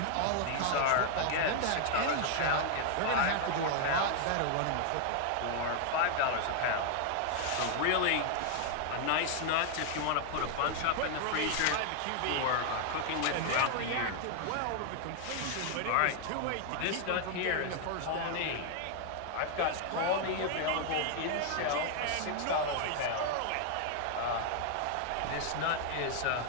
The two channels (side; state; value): both; different; correlation 0.00